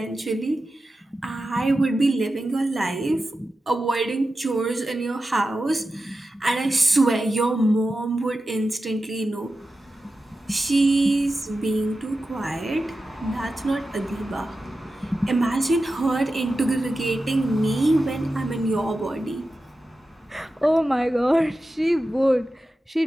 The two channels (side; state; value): both; normal; correlation 0.92